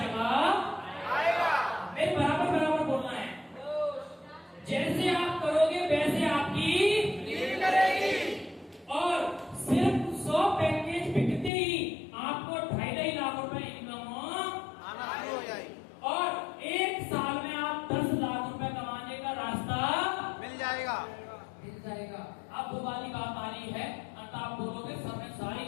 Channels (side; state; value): right; drops out; at 11.5 s